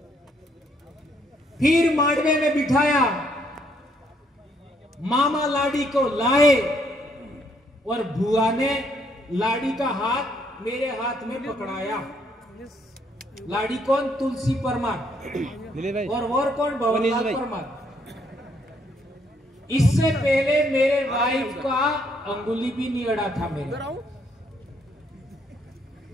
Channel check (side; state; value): both; normal; correlation 0.70